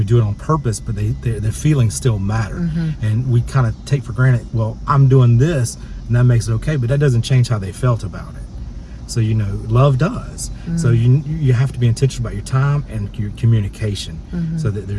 do it on purpose, but their feelings still matter. And we kind of take for granted, well, I'm doing this and that makes it okay, but that doesn't change how they felt about it. So, you know, love does. So you have to be intentional about your time and your communication, so that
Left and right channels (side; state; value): both; identical; correlation 1.00